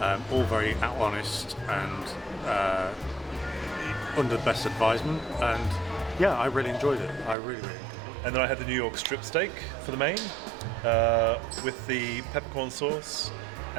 all very honest and under the best advisement, and yeah, I really enjoyed it. I really enjoyed it. And then I had the New York strip steak for the main, with the peppercorn sauce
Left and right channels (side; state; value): left; drops out; at 7.4 s